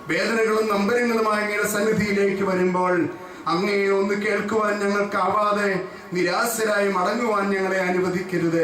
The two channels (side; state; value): both; identical; correlation 1.00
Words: വേദനകളും നമ്പരങ്ങളുമായി അങ്ങയുടെ സന്നിധിയിലേക്ക് വരുമ്പോൾ അങ്ങയെ ഒന്ന് കേൾക്കുവാൻ ഞങ്ങൾക്കാവാതെ നിരാശരായി മടങ്ങുവാൻ ഞങ്ങളെ